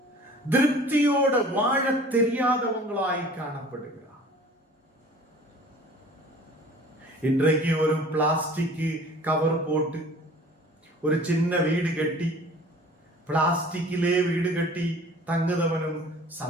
திருப்தியோட வாழ தெரியாதவங்களாய் காணப்படுகிறார். இன்றைக்கு ஒரு பிளாஸ்டிக் கவர் போட்டு ஒரு சின்ன வீடு கட்டி, பிளாஸ்டிக்கிலே வீடு கட்டி தங்குதவனும்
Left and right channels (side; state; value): both; normal; correlation 0.47